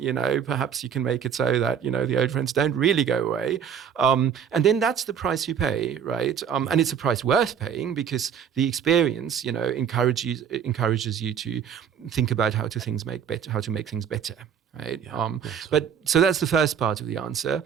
perhaps you can make it so that, the old friends don't really go away. And then that's the price you pay, right? And it's a price worth paying, because the experience, encourages you to think about how to make things better. Right. But so that's the first part of the answer.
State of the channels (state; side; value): quieter; left; 7.9 dB